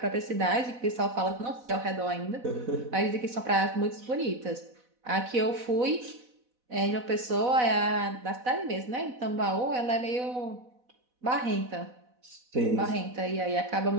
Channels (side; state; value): left; late; 4.1 ms